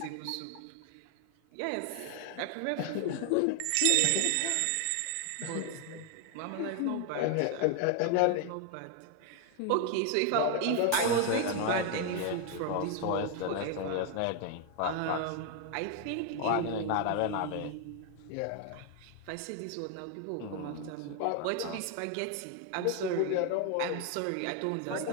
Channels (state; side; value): different; both; correlation 0.00